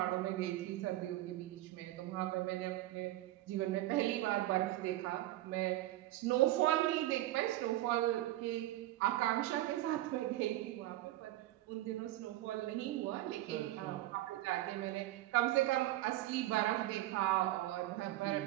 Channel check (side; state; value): left; quieter; 16.0 dB